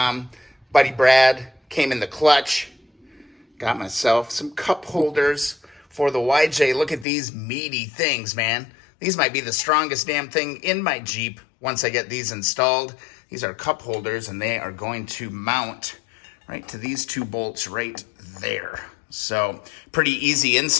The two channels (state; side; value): drops out; right; at 7.1 s